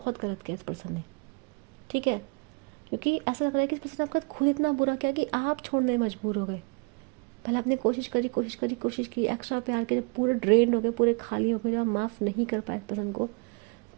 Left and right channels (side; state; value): left; quieter; 31.6 dB